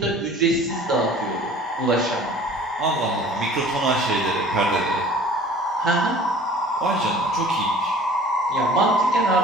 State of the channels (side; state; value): both; normal; correlation 0.47